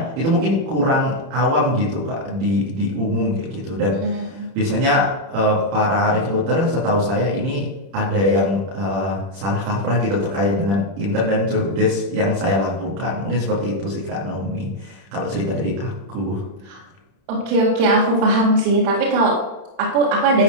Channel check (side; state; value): left; late; 31 ms